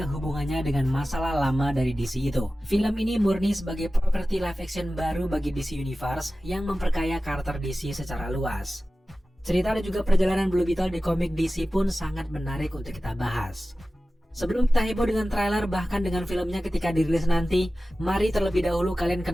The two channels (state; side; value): normal; both; correlation 0.95